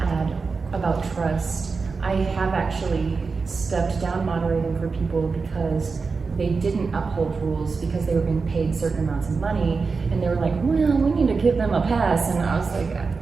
add about trust, I have actually stepped down moderating for people because they didn't uphold rules because they were being paid certain amounts of money, and they were like, well, we need to give them a pass. And I was like,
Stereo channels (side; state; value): left; quieter; 4.6 dB